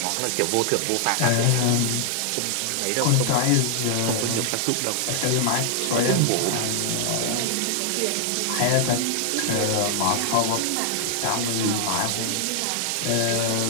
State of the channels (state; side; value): different; both; correlation -0.01